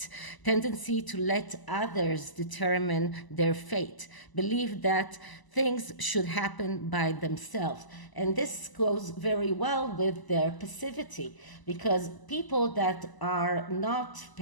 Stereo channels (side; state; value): right; late; 1.0 ms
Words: tendency to let others determine their fate, believe that things should happen by themselves. And this goes very well with their passivity, because people that are not